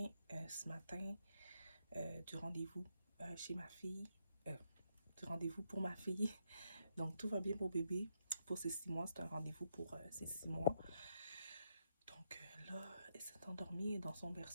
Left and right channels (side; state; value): both; inverted; correlation -0.79